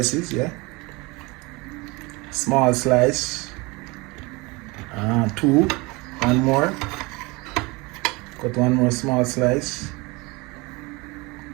yeah? Small slice. Two, one more. Cut one more small slice.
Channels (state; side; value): quieter; left; 25.1 dB